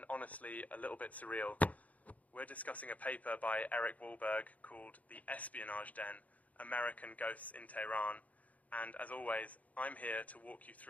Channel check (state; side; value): late; right; 0.071 ms